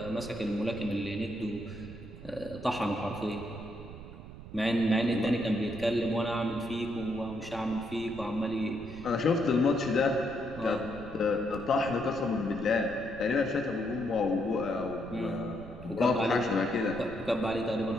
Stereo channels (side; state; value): right; noise; rumble, 14 dB below the sound